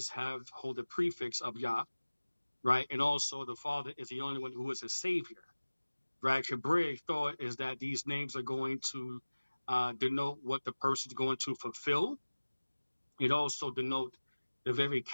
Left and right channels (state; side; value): inverted; both; correlation -1.00